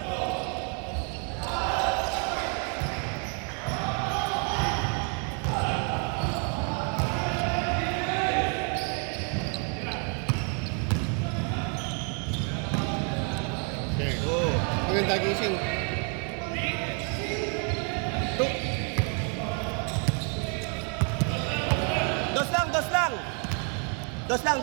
Maganda gising. Dos lang, dos lang. Dos lang,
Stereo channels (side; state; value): left; quieter; 39.2 dB